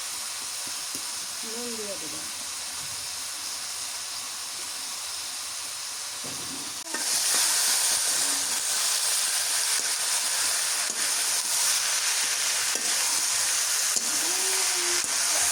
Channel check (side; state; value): both; identical; correlation 1.00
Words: নুন দিয়ে দেবো।